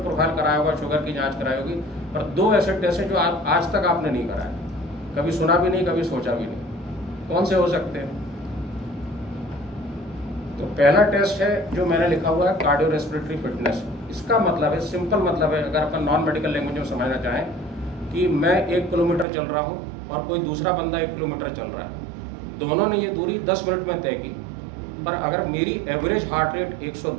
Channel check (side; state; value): left; drops out; at 19.2 s